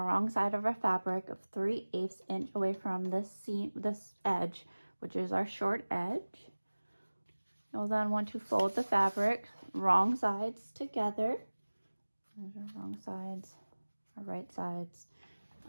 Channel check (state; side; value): inverted; both; correlation -1.00